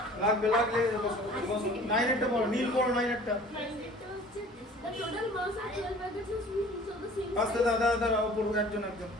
লাগবে লাগলে বসো বসো। 9 একটা পড়ো, নীল পড়ো 9 একটা। The total mass of 12 packets of sweets of the আস্তে দাদা দাদা পড়ো একজন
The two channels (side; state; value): both; normal; correlation 0.48